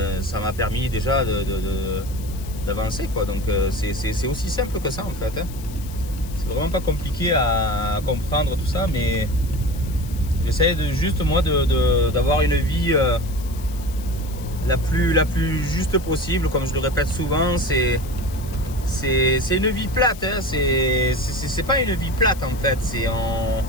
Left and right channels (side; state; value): left; noise; hiss, 18 dB below the sound